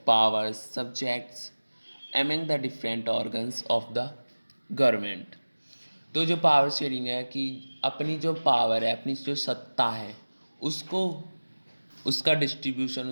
power subjects among the different organs of the government. तो जो पावर शेयरिंग है कि अपनी जो पावर है, अपनी जो सत्ता है, उसको उसका डिस्ट्रीब्यूशन,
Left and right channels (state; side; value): inverted; both; correlation -1.00